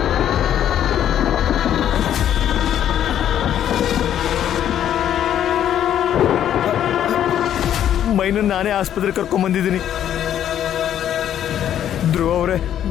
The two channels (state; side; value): quieter; right; 10.5 dB